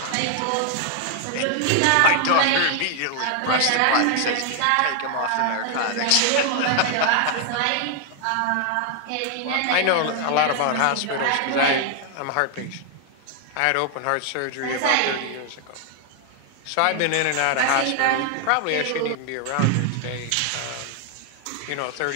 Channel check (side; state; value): both; different; correlation 0.00